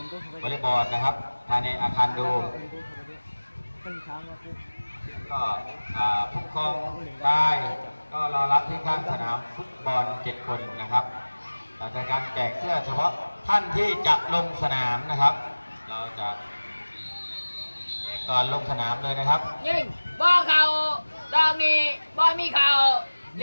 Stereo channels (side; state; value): both; inverted; correlation -1.00